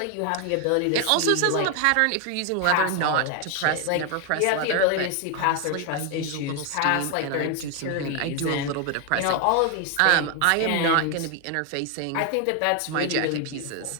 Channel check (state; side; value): different; both; correlation 0.01